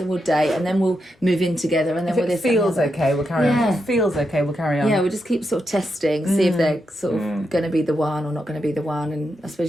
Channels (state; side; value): normal; both; correlation 0.85